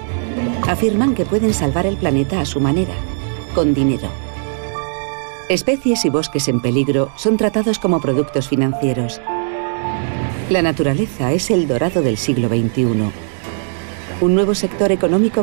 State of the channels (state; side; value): silent; left; digital silence